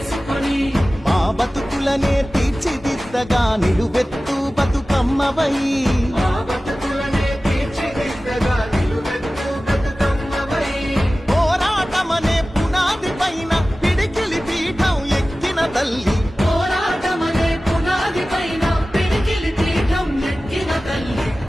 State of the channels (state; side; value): normal; both; correlation 0.96